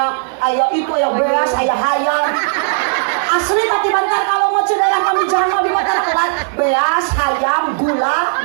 itu, aya beas, aya hayam. Asli tadi bantar kalau mau daerah kami jangan di mata kelas beas, hayam, gula.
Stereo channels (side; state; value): left; silent; 60 dB below the other